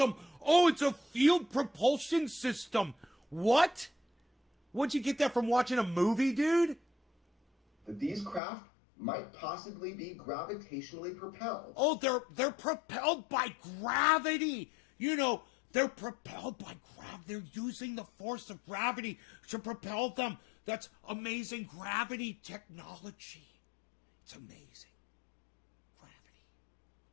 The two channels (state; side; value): drops out; right; at 8.4 s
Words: Oh, it's a field propulsion system. What? Where'd you get that from, watching a movie, dude? These craft might possibly be gravitationally propelled. Oh, they're propelled by gravity. You know, they're propelled by gravity. They're using the force of gravity to propel them. That's amazing gravity technology. It's amazing.